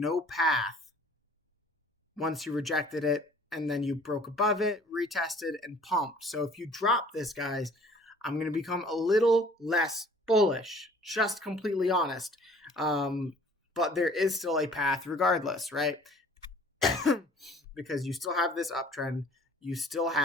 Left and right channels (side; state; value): both; normal; correlation 0.52